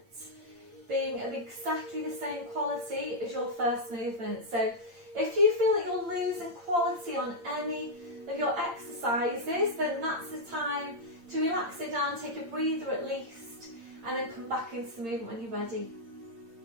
being of exactly the same quality as your first movement. So if you feel that you're losing quality on any of your exercises, then that's the time to relax it down, take a breather at least, and then come back into the movement when you're ready.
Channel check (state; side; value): late; left; 8.7 ms